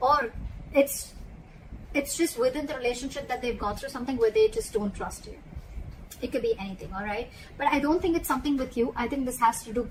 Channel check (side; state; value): both; identical; correlation 1.00